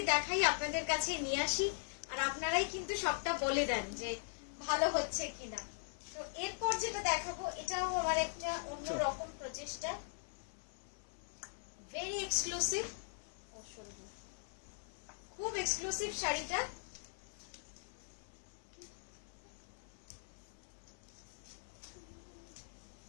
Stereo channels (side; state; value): right; silent; 51 dB below the other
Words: দেখাই, আপনাদের কাছে নিয়ে আসি, আর আপনারাই কিন্তু সবটা বলে দেন যে ভালো হচ্ছে কিনা। তো এরপর যেটা দেখাবো এটাও আমার একটা অন্যরকম প্রচেষ্টা, ভেরি এক্সক্লুসিভ, খুব এক্সক্লুসিভ শাড়িটা।